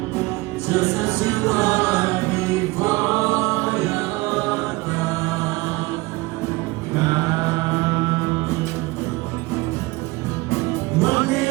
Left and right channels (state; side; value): quieter; left; 22.1 dB